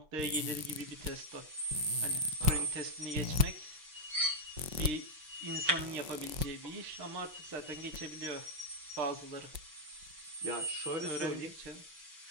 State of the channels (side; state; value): left; late; 5.7 ms